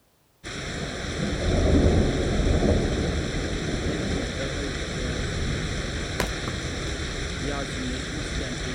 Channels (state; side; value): identical; both; correlation 1.00